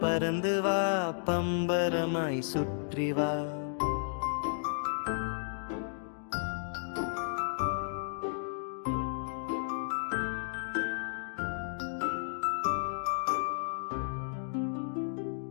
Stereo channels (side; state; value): right; silent; digital silence